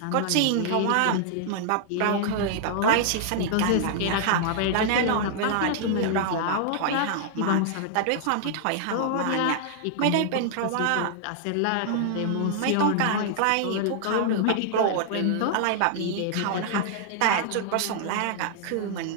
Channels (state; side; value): different; both; correlation -0.01